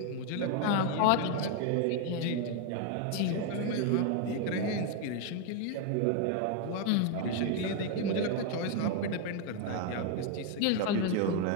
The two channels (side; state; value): both; different; correlation 0.01